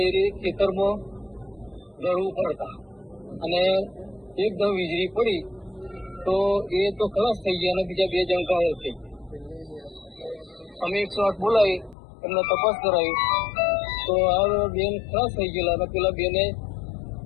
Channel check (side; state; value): right; drops out; at 12.0 s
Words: ખેતરમાં દળવું પડતા અને એકદમ વીજળી પડી તો એ તો ખલાસ થઈ ગયા અને બીજા બે જણ ઘાયલ થઈ ગયા। અમે 108 બોલાવી એમને તપાસ કરાવી તો આ બેન ખલાસ થઈ ગયેલા અને પેલા બેને